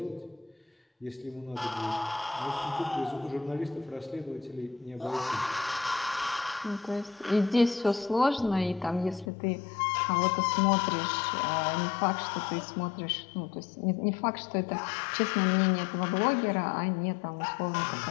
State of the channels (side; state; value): right; drops out; at 9.3 s